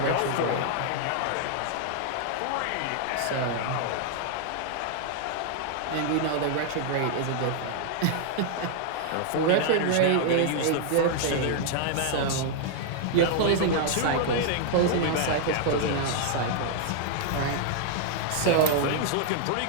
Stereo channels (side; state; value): both; different; correlation 0.00